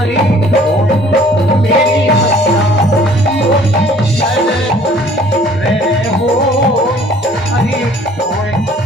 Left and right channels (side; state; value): both; normal; correlation 0.55